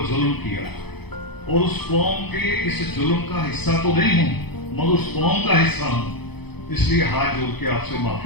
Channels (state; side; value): late; right; 0.98 ms